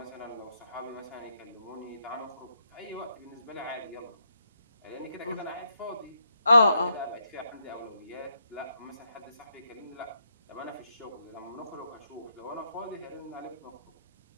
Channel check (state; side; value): inverted; both; correlation -0.79